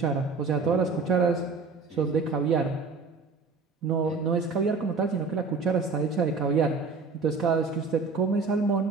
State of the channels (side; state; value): left; quieter; 4.4 dB